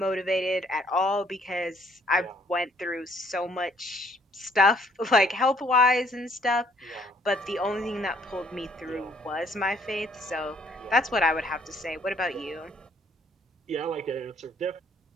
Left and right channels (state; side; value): normal; both; correlation 0.63